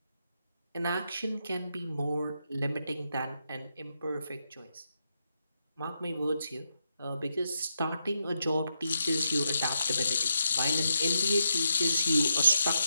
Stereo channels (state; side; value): inverted; both; correlation -0.82